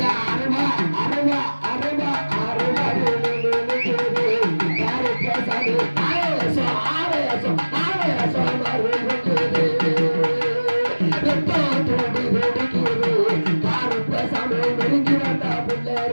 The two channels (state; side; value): inverted; both; correlation -1.00